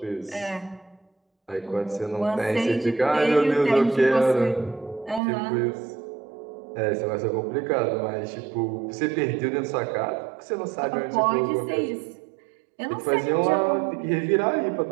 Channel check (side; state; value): left; drops out; at 5.2 s